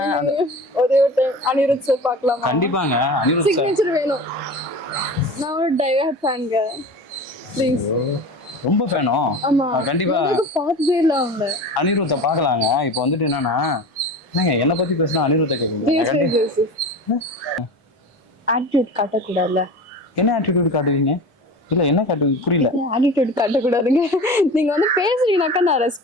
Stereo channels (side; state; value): both; normal; correlation 0.33